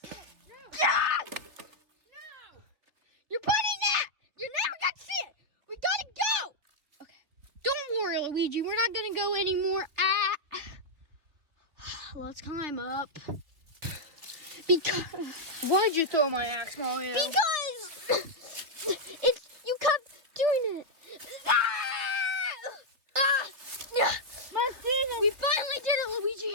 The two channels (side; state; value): left; late; 3.1 ms